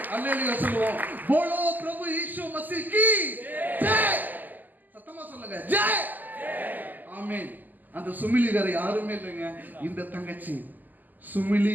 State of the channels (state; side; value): late; left; 0.085 ms